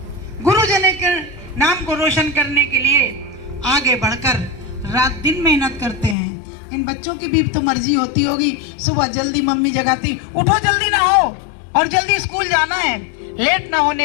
गुरुजन के नाम को रोशन करने के लिए आगे बढ़कर रात दिन मेहनत करते हैं। इन बच्चों की भी तो मर्जी होती होगी, सुबह जल्दी मम्मी जगाती, उठो जल्दी ना हो और जल्दी स्कूल जाना है, लेट ना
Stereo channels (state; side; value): drops out; right; at 6.2 s